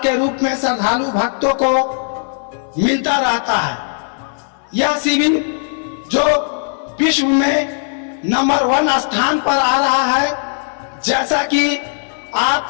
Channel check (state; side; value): silent; right; 61 dB below the other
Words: के रूप में श्रद्धालु भक्तों को मिलता रहता है। यह शिविर जो विश्व में नंबर 1 स्थान पर आ रहा है, जैसा कि